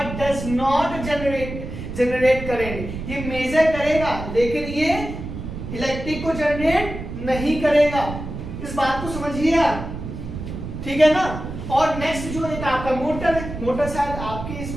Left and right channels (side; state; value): right; noise; rumble, 8 dB below the sound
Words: does not generate generate करेंगे। ये मेजर करेगा लेकिन ये इलेक्ट्रिक को जनरेट नहीं करेगा। इस बात को समझिए आप, ठीक है ना। और नेक्स्ट जो एक आपका मोटर है, मोटर शायद आपके इस